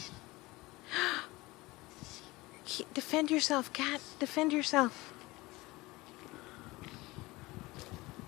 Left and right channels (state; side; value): quieter; right; 21.2 dB